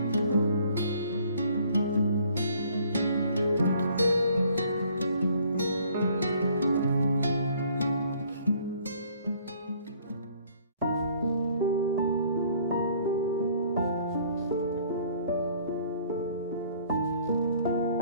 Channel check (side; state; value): both; inverted; correlation -0.59